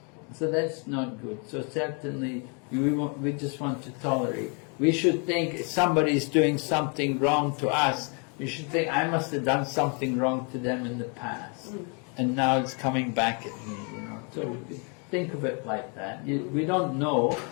So that's not good. So certainly, we just want to tolerate. We should think if somebody is doing something wrong to us, we should think, I must have done something wrong to them in the past. And now it's coming back at me, So think of it like that. We don't know,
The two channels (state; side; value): quieter; right; 36.5 dB